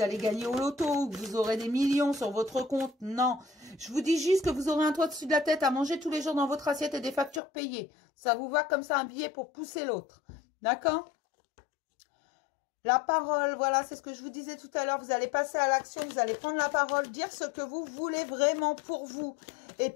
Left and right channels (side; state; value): right; drops out; at 7.4 s